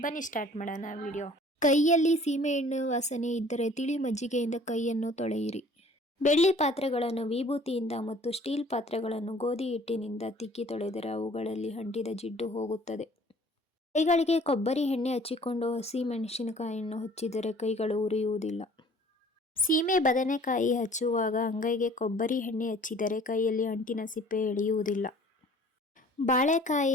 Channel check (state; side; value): normal; both; correlation 0.52